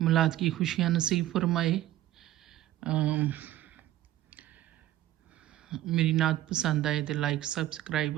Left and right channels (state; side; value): quieter; left; 13.8 dB